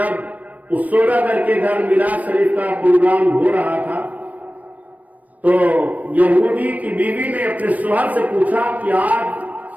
اس سوداگر کے گھر میلاد شریف کا پروگرام ہو رہا تھا تو یہودی کی بیوی نے اپنے شوہر سے پوچھا کہ آج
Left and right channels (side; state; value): left; late; 0.073 ms